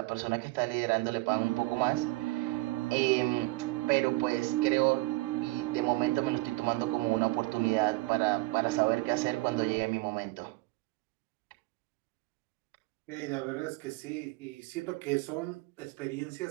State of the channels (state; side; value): quieter; left; 22.2 dB